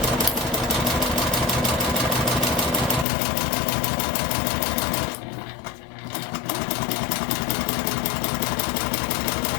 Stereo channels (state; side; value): drops out; right; at 3.1 s